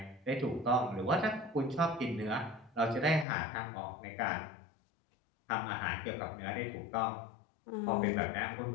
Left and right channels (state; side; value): drops out; right; at 3.2 s